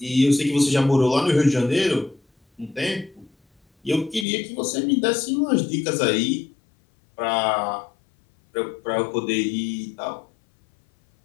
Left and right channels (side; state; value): right; drops out; at 4.2 s